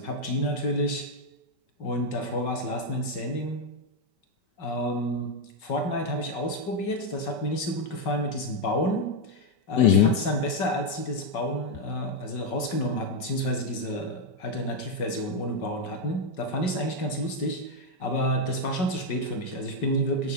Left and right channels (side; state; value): right; late; 5.4 ms